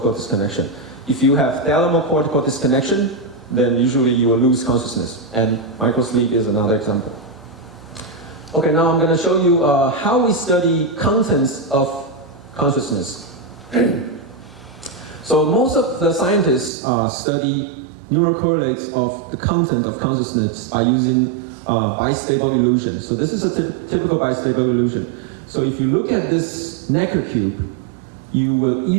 disconnection. If you have thalamocortical disconnection, then usually you will lose consciousness, and microsleep is another example. Okay, now I'm going to show you how we study contents of consciousness. So most of the scientists study neural correlates of the content of consciousness by using bistable illusion. So this is a typical bistable illusion. So if you look at this Necker cube, you will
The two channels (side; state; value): left; drops out; at 16.7 s